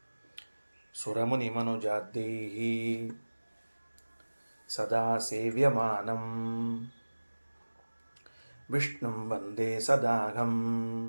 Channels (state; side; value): inverted; both; correlation -1.00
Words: ಸುರಮುನಿಮನುಜಾದ್ಯೈಃ ಸದಾ ಸೇವ್ಯಮಾನಂ ವಿಷ್ಣುಂ ವಂದೇ ಸದಾಘಂ